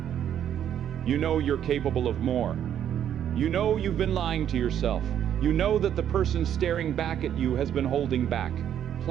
you're capable of more. You know you've been lying to yourself. You know that the person staring back at you has been holding back,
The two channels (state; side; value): quieter; left; 9.8 dB